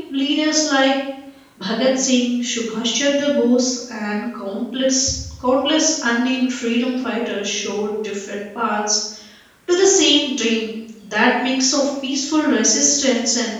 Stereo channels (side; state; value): both; identical; correlation 1.00